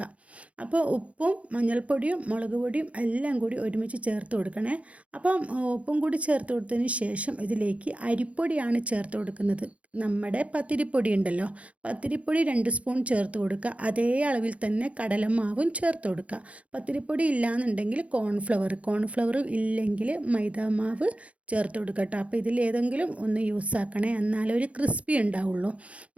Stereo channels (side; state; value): left; late; 0.064 ms